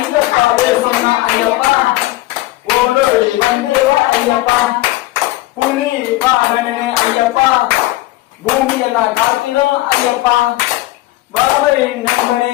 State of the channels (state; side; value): quieter; right; 17.9 dB